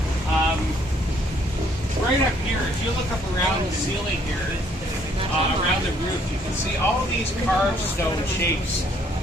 Right up here, if you look up around the ceiling here, around the roof, you can see all these carved stone shapes.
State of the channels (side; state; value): both; normal; correlation 0.65